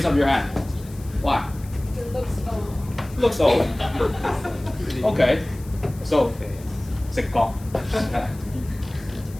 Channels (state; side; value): noise; left; hiss, 22 dB below the sound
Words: up your hand. Why? It looks old. Looks old. Okay. So 直覺.